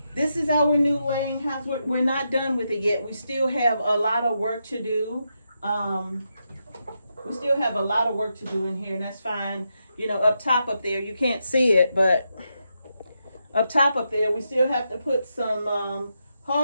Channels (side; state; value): both; inverted; correlation -0.84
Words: this is our new laying house. We're not done with it yet. We still have a lot of work to do. We still have a lot of work to do in here, and that's fine. You know, up top up there, you can't see it, but up top up there, we still have to put some